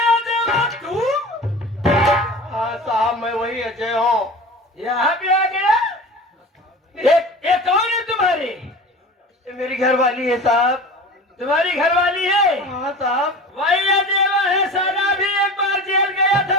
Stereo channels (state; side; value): normal; both; correlation 0.35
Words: अजय तू? हाँ साहब मैं वही अजय हूँ। यहाँ पे आ गया? ये कौन है तुम्हारी? मेरी घरवाली है साहब। तुम्हारी घरवाली है? हाँ साहब। वही अदेवा है, सारा भी एक बार जेल गया